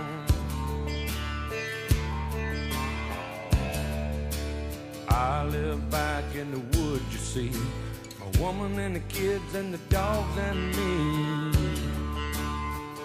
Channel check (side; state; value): both; identical; correlation 1.00